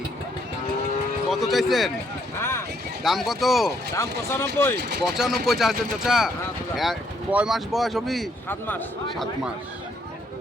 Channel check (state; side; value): normal; both; correlation 0.70